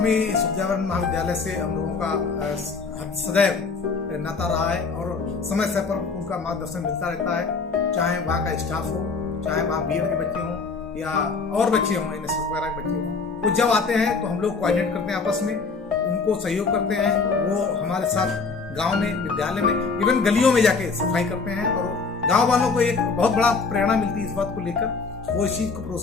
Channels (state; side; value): quieter; right; 4.5 dB